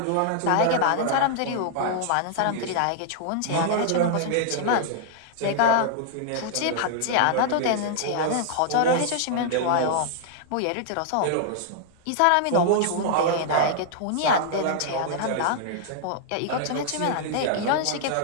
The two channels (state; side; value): different; both; correlation -0.01